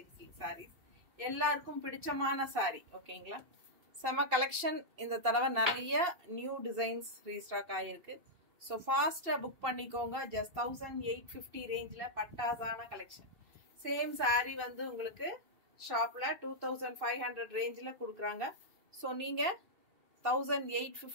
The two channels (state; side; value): late; left; 2.6 ms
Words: சில்க் sarees. எல்லாருக்கும் பிடிச்சமான saree. ஓகேங்களா? செம கலெக்ஷன். இந்த தடவை நிறைய நியூ டிசைன்ஸ் ரீஸ்டாக் ஆயிருக்கு. சோ ஃபாஸ்டா புக் பண்ணிக்கோங்க. ஜஸ்ட் 1850 ரேஞ்ச்ல பட்டாசான கலெக்ஷன். சேம் saree வந்து உங்களுக்கு ஷாப்ல 2500 ரேஞ்ச்ல கொடுக்குறாங்க. சோ நீங்க